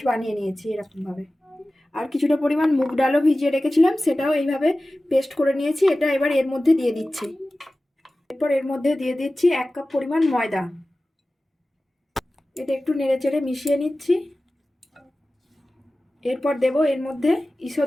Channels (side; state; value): both; normal; correlation 0.96